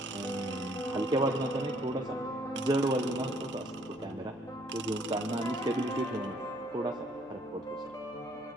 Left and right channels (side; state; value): right; noise; hum, 29 dB below the sound